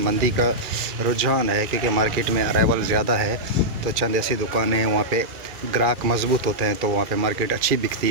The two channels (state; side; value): late; left; 2.4 ms